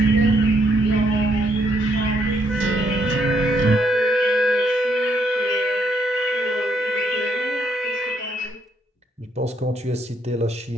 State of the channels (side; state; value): both; normal; correlation 0.72